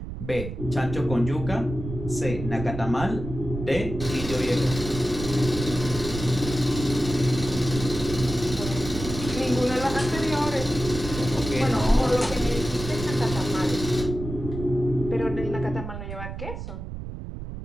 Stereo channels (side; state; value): right; noise; rumble, 8 dB below the sound